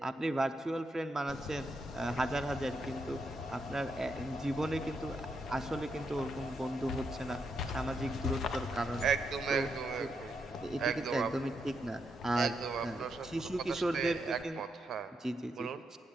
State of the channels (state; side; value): normal; both; correlation 0.81